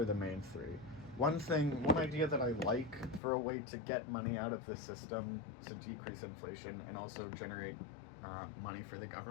the main three. One idea that I like for a way to get money out of the system to decrease inflation and also generate money for the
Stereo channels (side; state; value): right; drops out; at 3.2 s